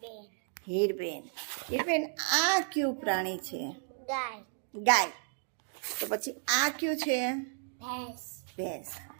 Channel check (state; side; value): silent; left; 56 dB below the other